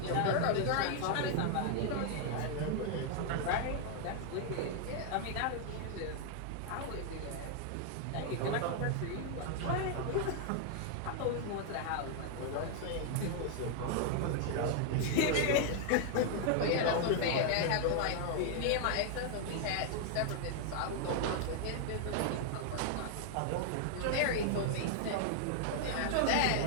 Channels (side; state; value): both; different; correlation 0.00